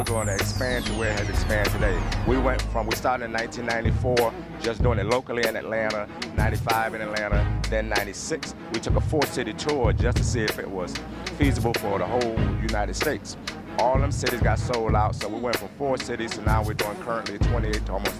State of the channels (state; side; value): identical; both; correlation 1.00